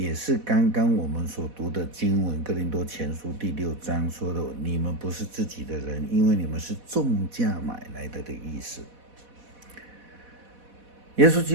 是刚刚我们所读的经文，哥林多前书第6章说的，你们不是自己的人，因为你们是重价买来的意思。耶稣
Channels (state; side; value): late; left; 4.1 ms